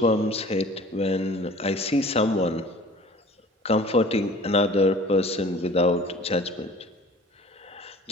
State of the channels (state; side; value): normal; both; correlation 0.46